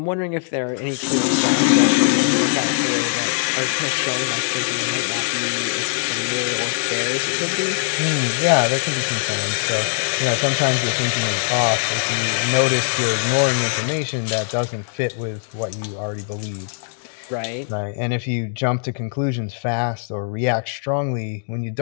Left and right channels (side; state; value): right; silent; digital silence